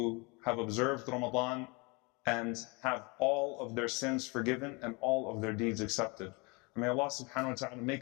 have observed Ramadan and have all of their sins forgiven and all of their deeds accepted. And may Allah subhanahu wa ta'ala make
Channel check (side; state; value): right; quieter; 28.7 dB